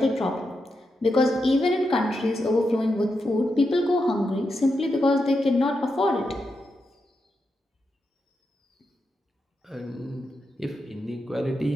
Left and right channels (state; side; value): normal; both; correlation 0.86